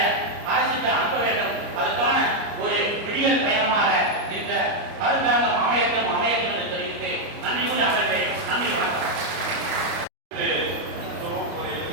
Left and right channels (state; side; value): late; left; 29 ms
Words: அரசுக்கு அனுப்ப வேண்டும். அதற்கான ஒரு விடியல் பயணமாக இந்த அரசாங்கம் அமையட்டும் என்று தெரிவித்து நன்றி கூறி அமர்வேன். நன்றி, வணக்கம்.